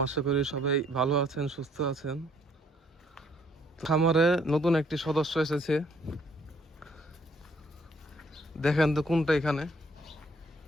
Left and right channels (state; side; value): normal; both; correlation 0.64